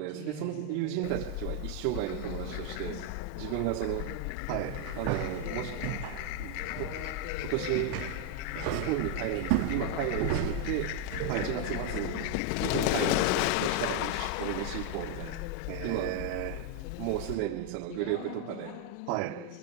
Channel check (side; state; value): both; different; correlation 0.01